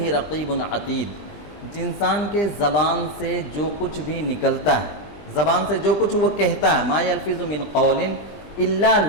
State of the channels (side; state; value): right; late; 20 ms